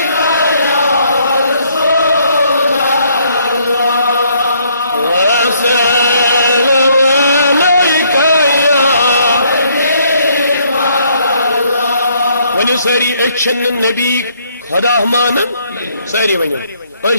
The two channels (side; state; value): both; inverted; correlation -0.67